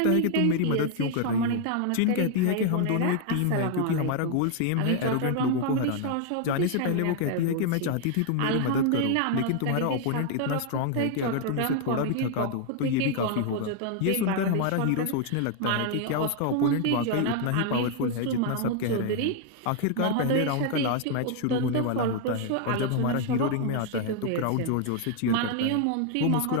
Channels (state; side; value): different; both; correlation 0.00